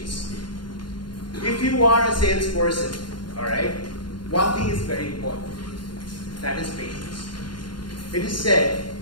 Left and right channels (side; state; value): right; late; 0.71 ms